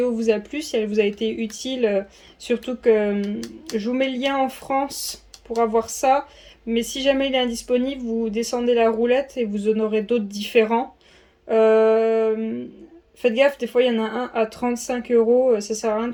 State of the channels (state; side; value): identical; both; correlation 1.00